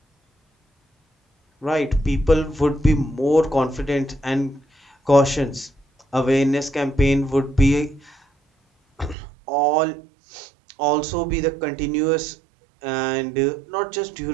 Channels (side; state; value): left; drops out; at 9.2 s